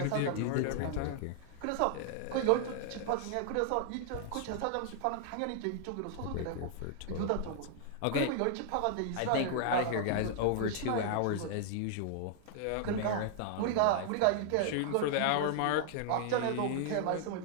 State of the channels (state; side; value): different; both; correlation 0.00